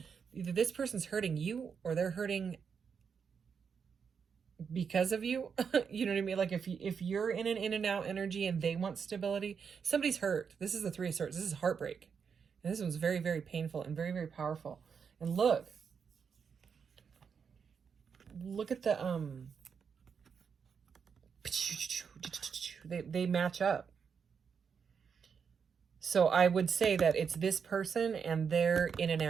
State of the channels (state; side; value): quieter; left; 6.4 dB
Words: Either this person's hurting you or they're hurting because of you. You know what I mean? Like if you're in an in and out energy and they want stability, somebody's hurt. This is the 3 of Swords. This is heartbreak. And this one's very, very painful and very, very powerful. And look at the they match up. So I would say that it's this person and their in and